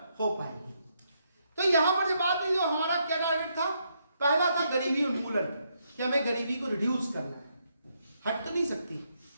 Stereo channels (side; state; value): both; inverted; correlation -0.77